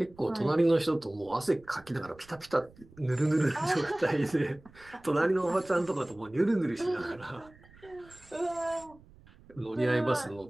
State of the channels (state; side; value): noise; right; rumble, 25 dB below the sound